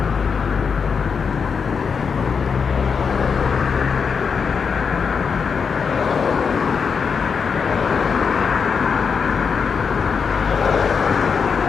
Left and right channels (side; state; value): right; quieter; 5.9 dB